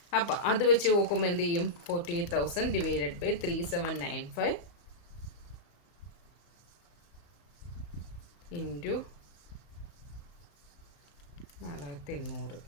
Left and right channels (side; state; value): right; late; 35 ms